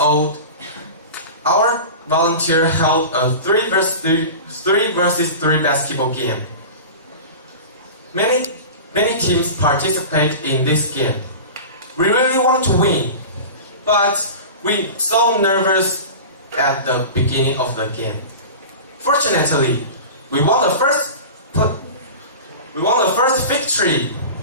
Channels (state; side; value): inverted; both; correlation -0.33